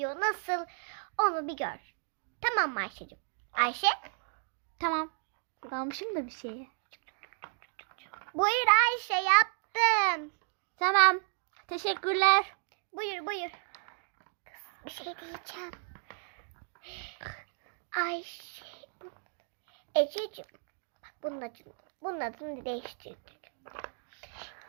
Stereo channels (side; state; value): left; silent; digital silence